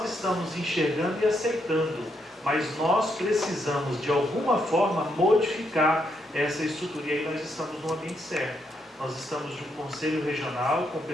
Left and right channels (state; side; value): normal; both; correlation 0.77